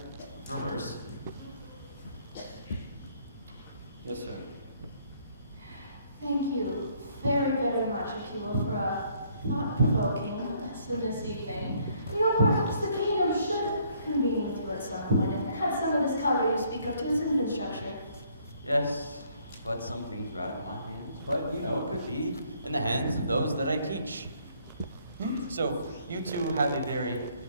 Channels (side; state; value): both; inverted; correlation -0.65